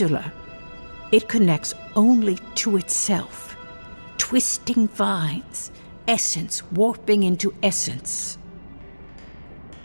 It connects only to itself, twisting vines, essence warping into essence.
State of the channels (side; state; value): both; inverted; correlation -1.00